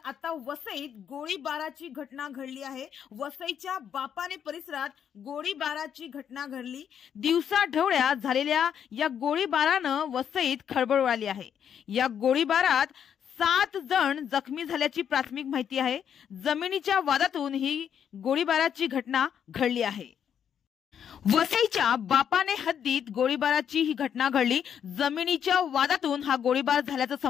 आता वसईत गोळीबाराची घटना घडली आहे। वसईच्या बापाने परिसरात गोळीबाराची घटना घडली। दिवसाढवळ्या झालेल्या या गोळीबारानं वसईत खळबळ उडाली आहे। या गोळीबारात 7 जण जखमी झाल्याची प्राथमिक माहिती आहे। जमिनीच्या वादातून ही गोळीबाराची घटना घडली आहे। वसईच्या बापाने हद्दीत गोळीबाराची ही घटना घडली। जमिनीच्या वादातून हा गोळीबार झाल्याचं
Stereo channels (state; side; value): quieter; right; 8.5 dB